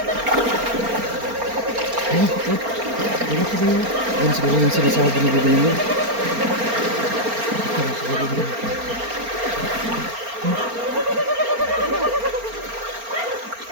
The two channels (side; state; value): left; late; 4.3 ms